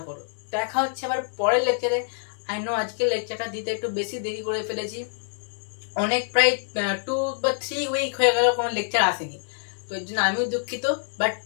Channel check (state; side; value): silent; right; 61 dB below the other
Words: করো। দেখা হচ্ছে আবার পরের লেকচারে। আই নো আজকের লেকচারটা দিতে একটু বেশি দেরি করে ফেলেছি, অনেক প্রায় 2 বা 3 উইক হয়ে গেল কোনো লেকচার আসেনি, তো এর জন্য আমিও দুঃখিত। বাট